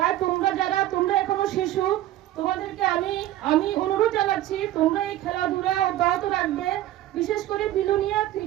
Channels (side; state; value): left; quieter; 14.0 dB